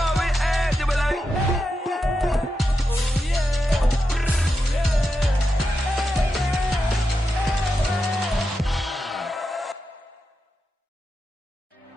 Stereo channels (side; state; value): both; normal; correlation 0.88